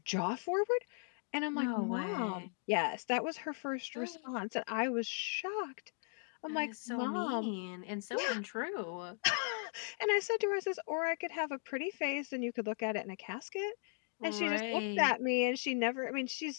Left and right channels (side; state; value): right; silent; 53 dB below the other